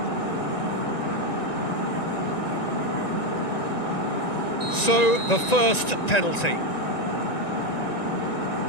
So, the first penalty.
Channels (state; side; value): late; right; 1.9 ms